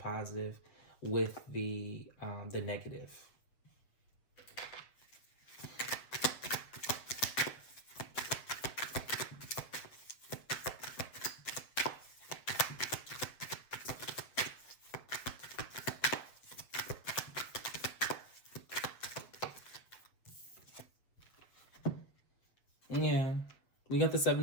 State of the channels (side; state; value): right; late; 7.6 ms